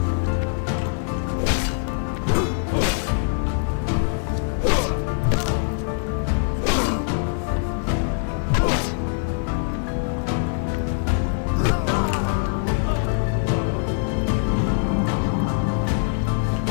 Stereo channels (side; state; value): right; silent; digital silence